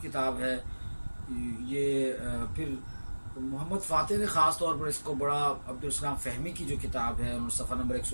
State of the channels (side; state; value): both; inverted; correlation -1.00